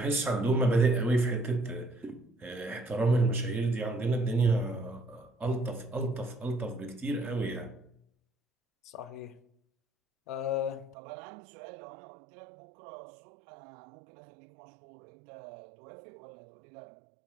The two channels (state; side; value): drops out; left; at 11.0 s